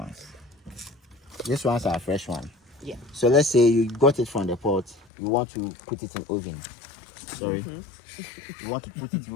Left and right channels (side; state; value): right; drops out; at 5.1 s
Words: These ones are fresh one. Yeah. So let's say you got it from the pot, you want to put it in oven. Sorry. You want to put it in